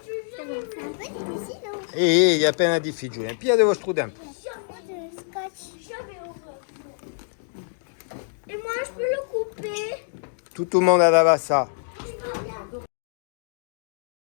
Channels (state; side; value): silent; right; digital silence